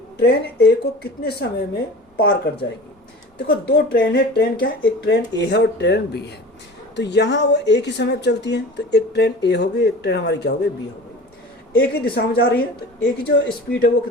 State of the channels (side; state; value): both; normal; correlation 0.38